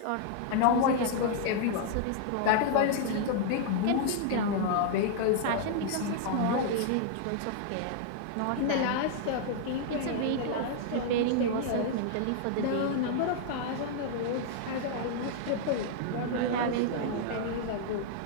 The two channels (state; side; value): different; both; correlation -0.01